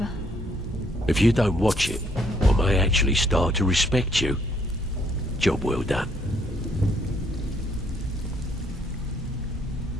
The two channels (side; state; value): both; normal; correlation 0.67